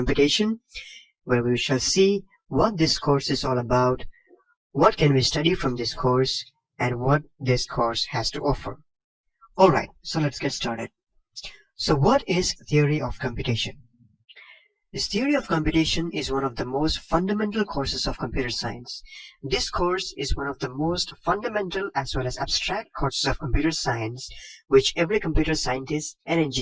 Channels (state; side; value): identical; both; correlation 1.00